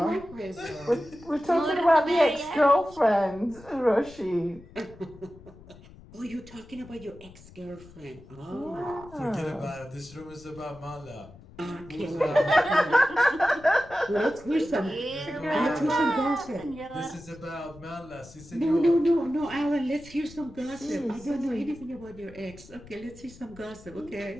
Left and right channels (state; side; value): noise; left; rumble, 20 dB below the sound